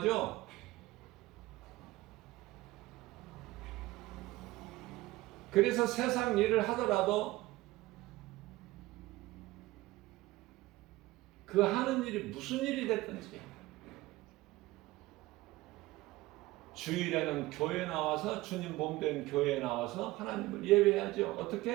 그래서 세상 일을 하더라도 그 하는 일이 무슨 일이 됐든지 주일에는 교회 나와서 주님 몸된 교회에 나와서 하나님을 예배해야죠.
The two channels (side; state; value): left; quieter; 18.8 dB